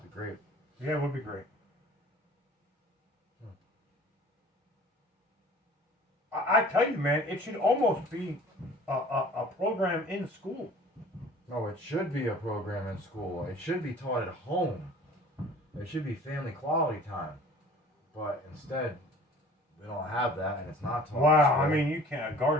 It'd be great. Yeah, it would be great. I tell you, man, it should almost be a program in school. No, it should be a program in school. It should be taught at home. It should be family quality time. But instead, They don't have that, and it's not taught. Wow, in I school. mean, a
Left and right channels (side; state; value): both; normal; correlation 0.48